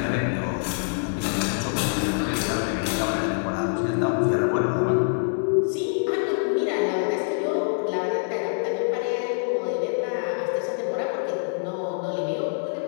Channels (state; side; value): silent; right; digital silence